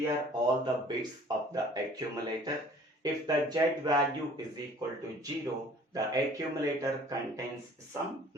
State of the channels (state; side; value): normal; both; correlation 0.52